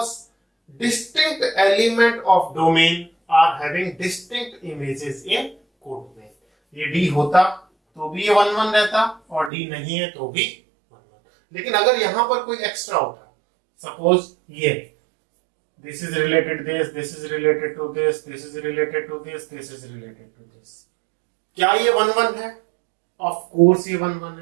distinct element of domain are having distinct images in codomain. ये D होता तो भी ये 1-1 रहता, और D नहीं है तो भी 1-1. लेकिन अगर यहां पर कोई एक्स्ट्रा होता, सपोज ये this is related this is related to this is related to this is related to this, क्या ये 1-1 है? ऑफ कोर्स ये 1-1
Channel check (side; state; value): left; drops out; at 9.5 s